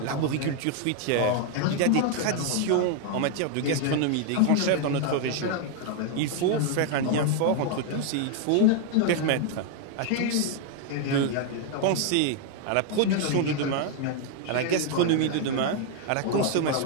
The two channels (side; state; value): both; different; correlation 0.00